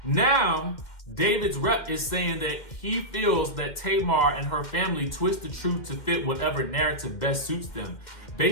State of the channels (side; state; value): right; late; 2.1 ms